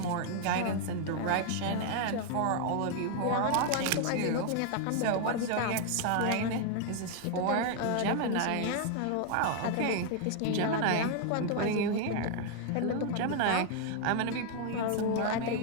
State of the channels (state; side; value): different; both; correlation 0.00